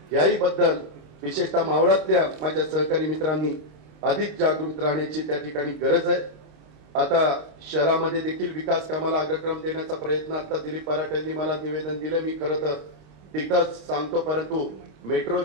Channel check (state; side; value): late; left; 26 ms